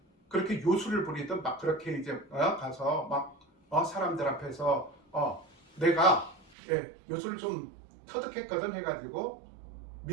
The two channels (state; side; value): drops out; left; at 6.5 s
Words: 그렇게 요술을 부리든 막 그렇게 이제 가서 막 사람들 앞에서 내가 요술을 좀 터득했거든 해가지고